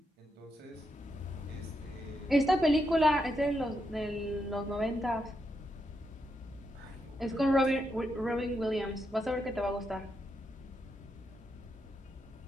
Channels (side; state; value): both; normal; correlation 0.82